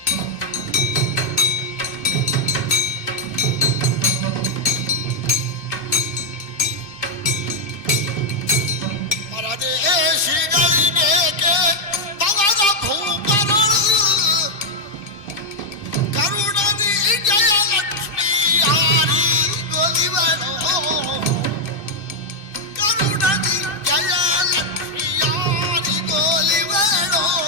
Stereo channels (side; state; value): right; late; 2.4 ms